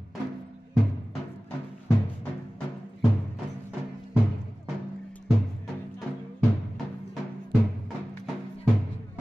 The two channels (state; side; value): normal; both; correlation 0.97